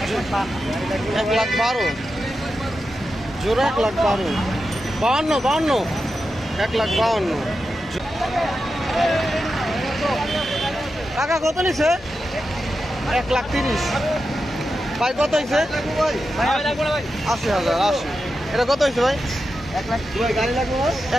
1,12,000। জোড়া 1,12,000। 52 1,52,000। টাকা কত নিছে? 1,30,000। ভাই কত হয়েছে? 80,000। 80। এটা কত হয়েছে ভাই?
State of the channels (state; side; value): normal; both; correlation 0.89